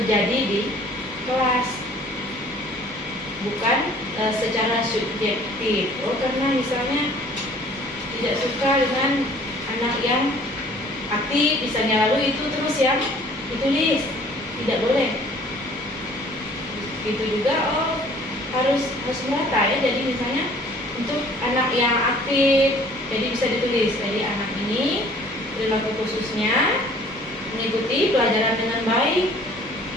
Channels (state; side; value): normal; both; correlation 0.53